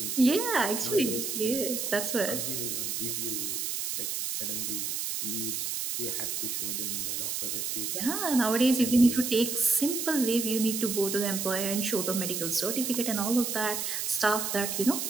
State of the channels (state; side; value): noise; right; hiss, 2 dB below the sound